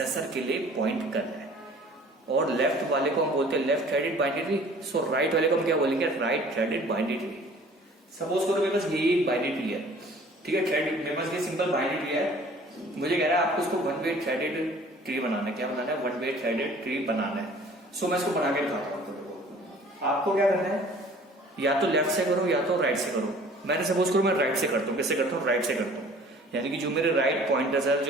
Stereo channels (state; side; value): normal; both; correlation 0.50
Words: के लिए पॉइंट करना है। और लेफ्ट वाले को हम बोलते हैं लेफ्ट थ्रेडेड बाइनरी ट्री, सो राइट वाले को हम क्या बोलेंगे? Right threaded binary tree. Suppose करो मेरे पास यही बाइनरी ट्री है, ठीक है, थ्रेड, मेरे पास ये सिंपल बाइनरी ट्री है, मुझे कह रहा है आपको इसको वन वे थ्रेडेड ट्री बनाना है। क्या बनाना है? वन वे थ्रेडेड ट्री बनाना है। सो मैं इसको बना के दिखाता हूँ आपको। क्या करना है? या तो लेफ्ट से करो या तो राइट से करो। मैंने सपोज करो मैं राइट से करता हूँ। कैसे करता हूँ? राइट से करता हूँ, यानी कि जो मेरे राइट पॉइंटर्स है,